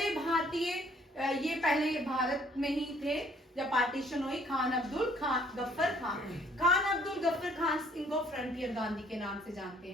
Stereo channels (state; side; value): normal; both; correlation 0.61